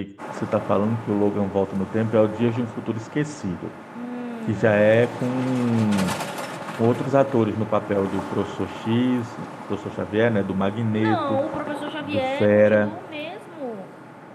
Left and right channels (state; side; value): identical; both; correlation 1.00